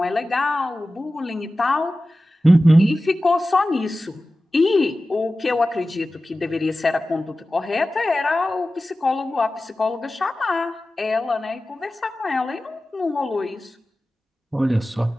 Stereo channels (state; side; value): normal; both; correlation 0.95